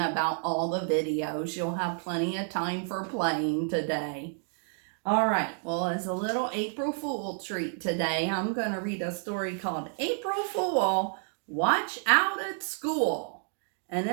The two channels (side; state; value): left; silent; 55 dB below the other